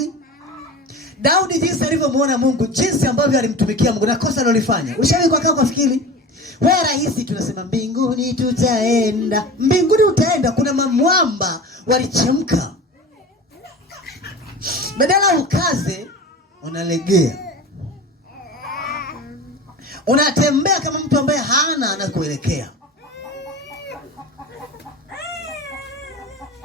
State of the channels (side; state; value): both; normal; correlation 0.33